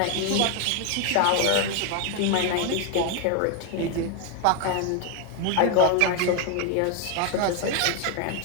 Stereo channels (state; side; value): different; both; correlation 0.01